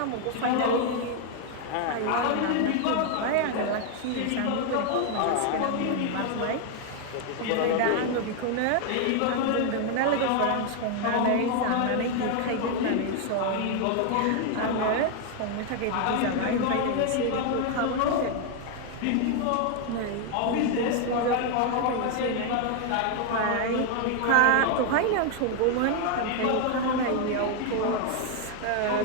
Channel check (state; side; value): different; both; correlation 0.00